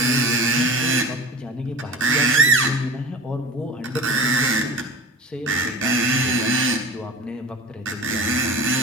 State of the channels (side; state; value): both; normal; correlation 0.35